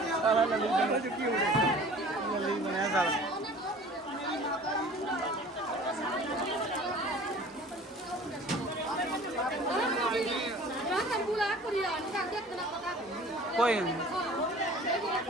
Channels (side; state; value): both; normal; correlation 0.46